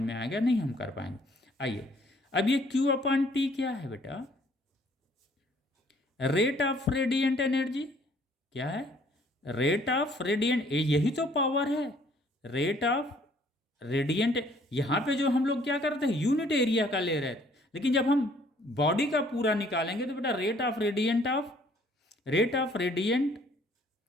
में आएगा नहीं हम कर पाएंगे। आइए अब ये Q/T क्या है बेटा, रेट ऑफ रेडिएंट एनर्जी। क्या है, रेट ऑफ रेडिएंट, यही तो पावर है, रेट ऑफ रेडिएंट। यहाँ पे जो हम लोग क्या करते हैं, यूनिट एरिया का ले रहे थे, लेकिन जब हम बॉडी का पूरा निकालेंगे तो बेटा rate of radiant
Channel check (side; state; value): both; normal; correlation 0.61